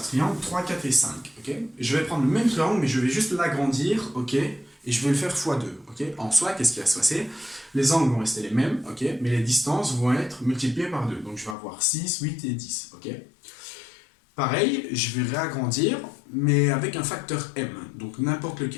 triangle 3, 4 et 5, ok. Je vais prendre le même triangle, mais je vais juste l'agrandir, ok, et je vais le faire x2, ok. En soi, qu'est-ce qui va se passer? Les angles vont rester les mêmes, ok, mais les distances vont être multipliées par 2, donc je vais avoir 6, 8 et 10, ok. Pareil, je vais réagrandir, mais avec un facteur m, donc n'importe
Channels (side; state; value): right; drops out; at 11.6 s